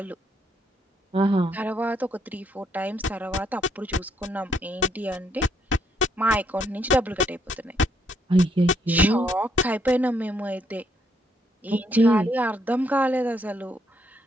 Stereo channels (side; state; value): both; normal; correlation 0.72